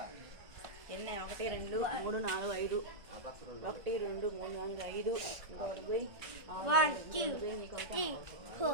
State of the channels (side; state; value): left; late; 1.5 ms